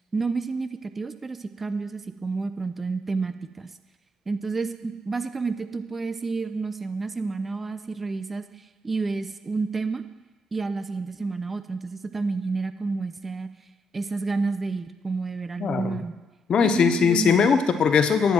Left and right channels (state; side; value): normal; both; correlation 0.77